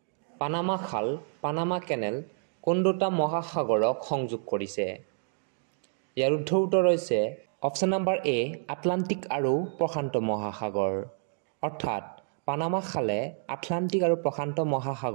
পানামা খাল, পানামা কেনেল কোন দুটা মহাসাগৰক সংযোগ কৰিছে? ইয়াৰ শুদ্ধ উত্তৰ হৈছে অপচন নম্বৰ এ, আটলান্টিক আৰু প্ৰশান্ত মহাসাগৰ, অৰ্থাৎ পানামা খালে আটলান্টিক আৰু প্ৰশান্ত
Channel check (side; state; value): left; silent; 59 dB below the other